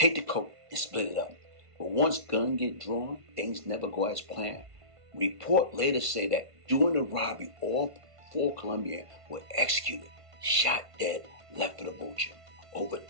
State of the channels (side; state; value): left; late; 1.5 ms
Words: the coke, and split it up. But once guns get drawn, things never go as planned. Report later say that during the robbery, all 4 Colombians were executed, shot dead, left for the vulture. Over